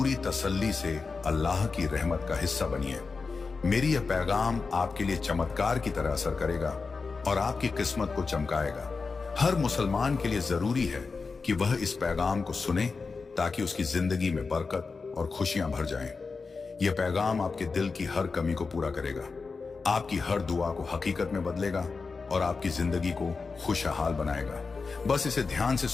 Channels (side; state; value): right; quieter; 4.5 dB